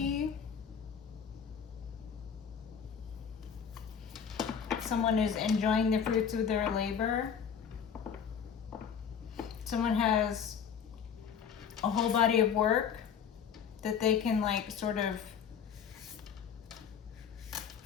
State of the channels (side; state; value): right; quieter; 7.3 dB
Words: Someone is enjoying the fruits of their labor. Someone has a whole body of work that they can like sort of